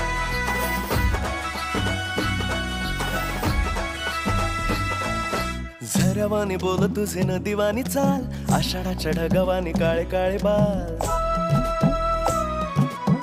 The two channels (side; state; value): both; identical; correlation 1.00